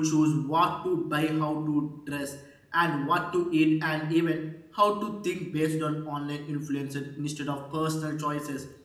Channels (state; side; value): identical; both; correlation 1.00